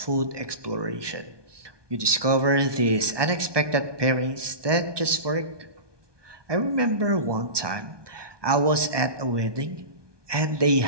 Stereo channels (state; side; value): late; left; 1.2 ms